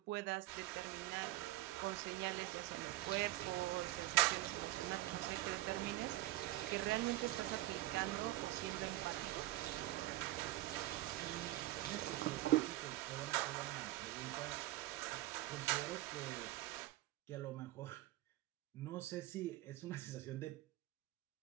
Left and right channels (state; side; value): quieter; left; 17.0 dB